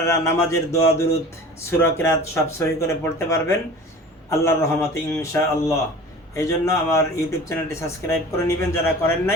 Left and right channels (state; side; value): normal; both; correlation 0.40